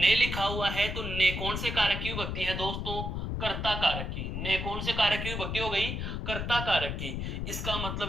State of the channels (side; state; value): left; noise; rumble, 3 dB below the sound